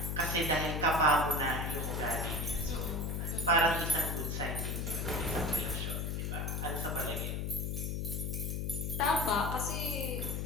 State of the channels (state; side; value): noise; left; hum, 1 dB below the sound